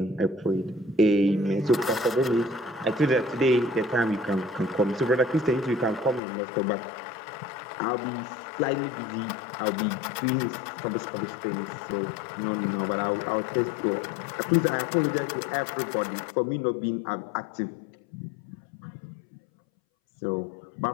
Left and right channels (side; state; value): right; drops out; at 6.2 s